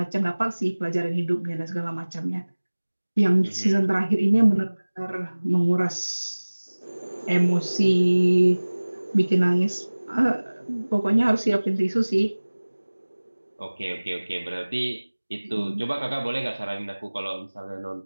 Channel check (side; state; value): both; inverted; correlation -1.00